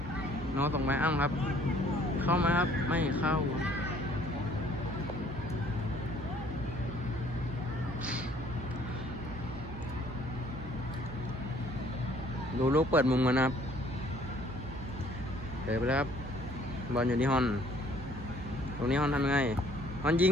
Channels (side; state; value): right; noise; hum, 10 dB below the sound